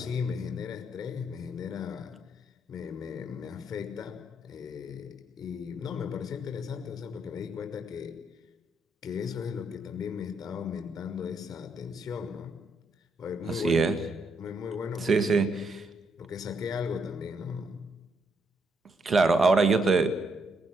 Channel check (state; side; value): normal; both; correlation 0.76